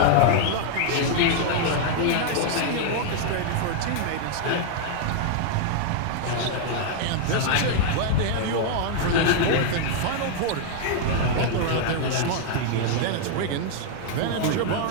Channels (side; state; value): both; different; correlation 0.00